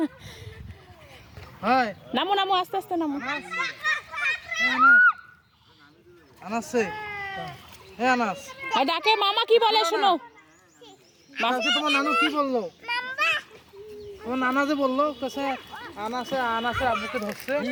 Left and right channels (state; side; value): identical; both; correlation 1.00